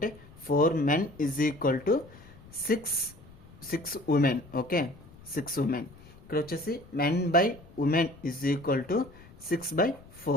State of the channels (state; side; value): noise; left; rumble, 21 dB below the sound